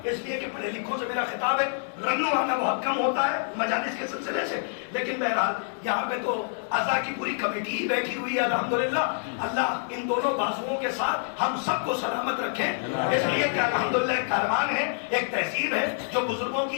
اس لیے کہ پڑھے لکھوں سے میرا خطاب ہے، رنو آنا بہت کم ہوتا ہے مجالس کے سلسلے سے، لیکن بہرحال یہاں پہ تو اعضاء کی پوری کمیٹی ہی بیٹھی ہوئی ہے الحمدللہ. اللہ ان دونوں بازوؤں کے ساتھ ہم سب کو سلامت رکھے، اس لیے کہ الحمدللہ ایک کاروان ہے، ایک تہذیب ہے جو بزرگوں کی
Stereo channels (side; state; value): right; silent; digital silence